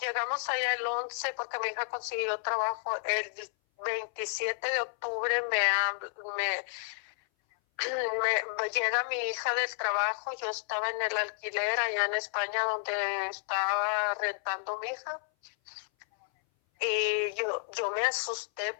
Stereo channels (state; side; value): silent; right; 57 dB below the other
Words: llegamos allá el 11 porque mi hija consiguió trabajo, el 27 de octubre llega mi hija del trabajo, yo estaba en el alquiler allá en España donde estaba rentando mi hija y yo me asusté